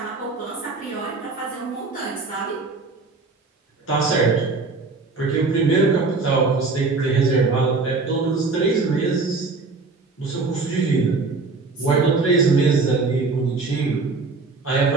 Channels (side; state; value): left; quieter; 3.9 dB